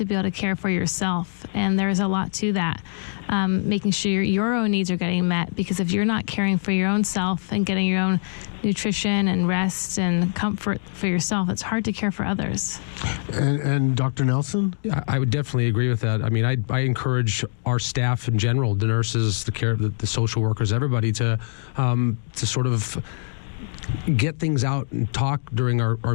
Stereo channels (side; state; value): right; silent; digital silence